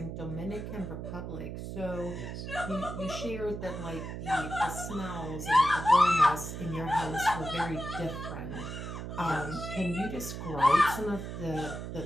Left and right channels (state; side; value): noise; right; hum, 7 dB below the sound